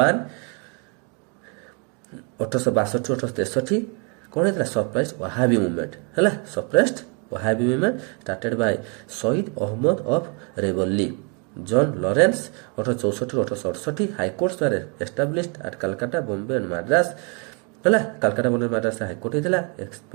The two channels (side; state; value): left; quieter; 35.5 dB